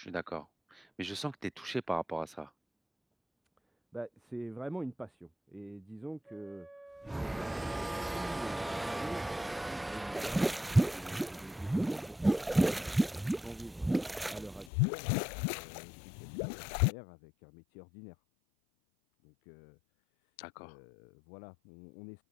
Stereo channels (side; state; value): right; drops out; at 14.7 s